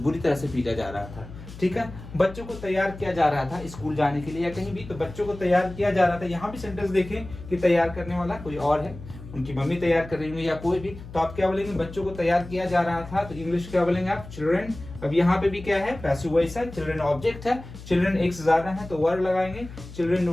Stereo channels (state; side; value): noise; left; hum, 15 dB below the sound